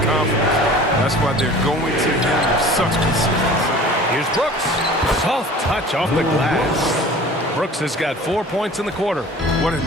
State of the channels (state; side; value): normal; both; correlation 0.44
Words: confidence. That's why they're going to him with such consistency. Here's Brooks. Soft touch off the glass. Brooks has got 4 points in the quarter. What an